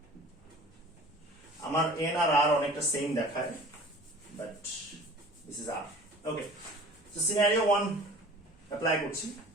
আমার এন আর আর অনেকটা সেম দেখায়, but this is r. Okay, so scenario 1 apply করছি।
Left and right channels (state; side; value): normal; both; correlation 0.44